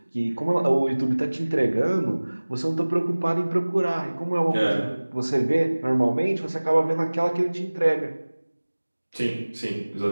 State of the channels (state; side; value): inverted; both; correlation -1.00